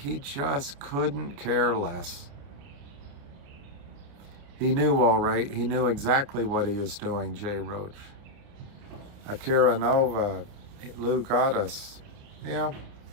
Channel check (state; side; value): late; left; 29 ms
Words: just couldn't care less. He knew all right. He knew exactly what he was doing, Jay Roach. Akira Nova, Lou got us. Yeah.